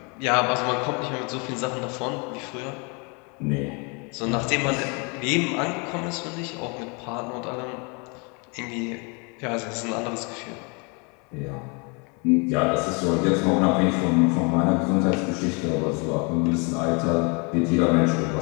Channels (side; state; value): right; quieter; 32.3 dB